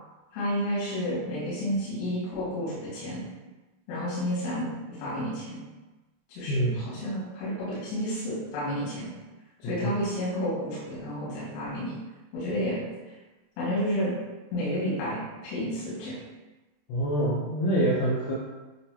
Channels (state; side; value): late; right; 27 ms